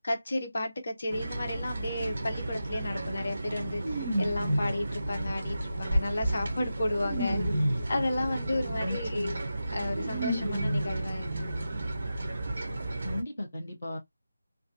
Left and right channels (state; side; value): inverted; both; correlation -0.91